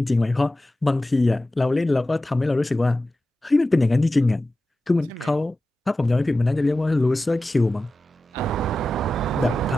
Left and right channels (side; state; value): both; normal; correlation 0.94